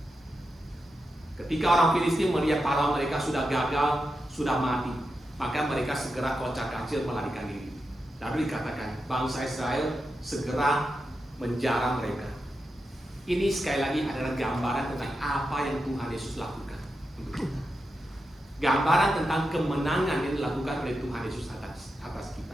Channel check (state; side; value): normal; both; correlation 0.88